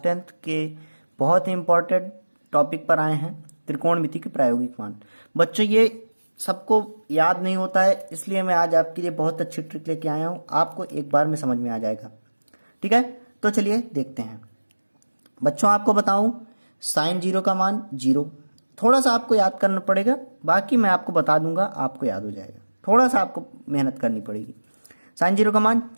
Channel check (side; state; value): both; inverted; correlation -1.00